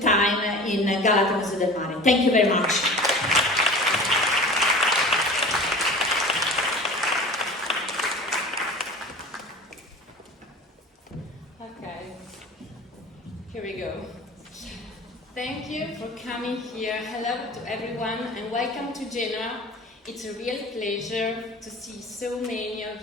time in Galata Museo del Mare. Thank you very much. Okay, here we go. Thank you for coming here. Hello to everyone and welcome to Genoa. It's a real pleasure to see so many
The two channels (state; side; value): normal; both; correlation 0.38